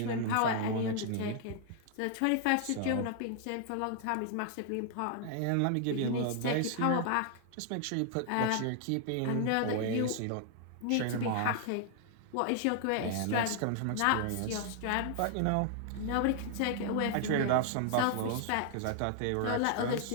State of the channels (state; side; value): different; both; correlation 0.00